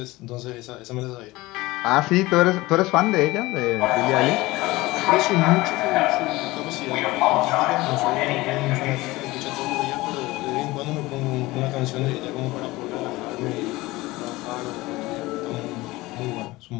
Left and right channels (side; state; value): right; quieter; 19.9 dB